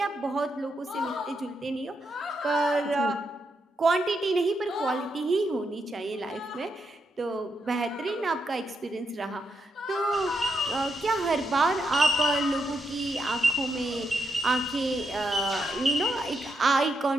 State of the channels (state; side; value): normal; both; correlation 0.81